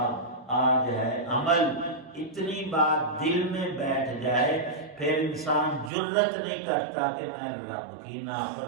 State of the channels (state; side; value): drops out; left; at 5.9 s